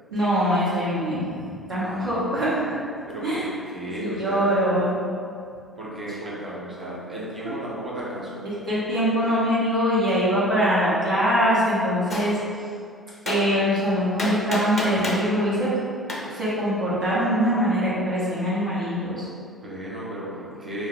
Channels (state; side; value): normal; both; correlation 0.43